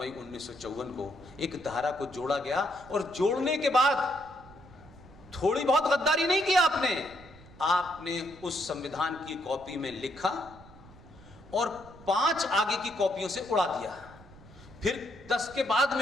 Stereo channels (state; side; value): noise; right; rumble, 21 dB below the sound